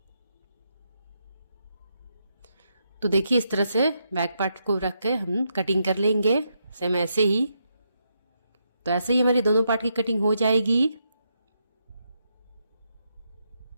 तो देखिए इस तरह से बैक पार्ट को रख के हम कटिंग कर लेंगे सेम ऐसे ही। तो ऐसे ही हमारी दोनों पार्ट की कटिंग हो जाएगी।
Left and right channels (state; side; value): inverted; both; correlation -0.81